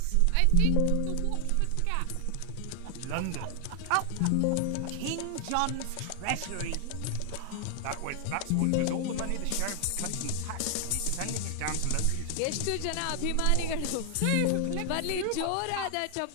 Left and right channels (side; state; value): both; different; correlation 0.00